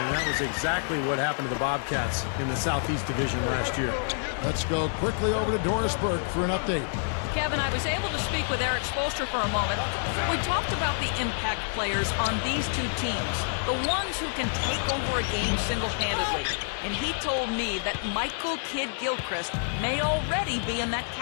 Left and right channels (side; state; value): right; silent; digital silence